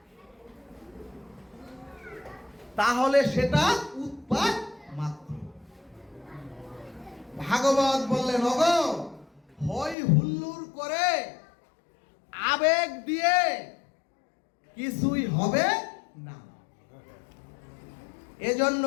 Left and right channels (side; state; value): right; drops out; at 10.0 s